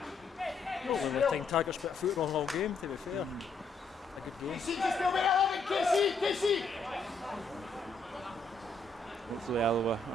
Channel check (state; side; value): quieter; right; 3.8 dB